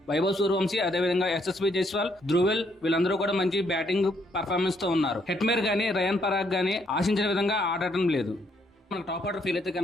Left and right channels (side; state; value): both; normal; correlation 0.71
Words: వైభవ్ సూర్యవంశీ అదేవిధంగా ఎస్ఎస్వి జైస్వాల్, ధ్రువెల్ వీళ్ళందరూ కూడా మంచి బ్యాటింగ్ పర్ఫార్మెన్స్ తో ఉన్నారు. హెట్మేర్ గానీ రయాన్ పరాగ్ గానీ ఆశించిన విధంగా ఆడటం లేదు. మనకు టాప్ ఆర్డర్ ఫీల్ అయితే